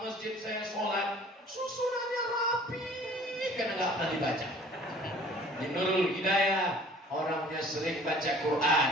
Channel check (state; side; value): normal; both; correlation 0.50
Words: masjid saya sholat, susunannya rapi karena nggak pernah dibaca. Di Nurul Hidayah orangnya sering baca Quran.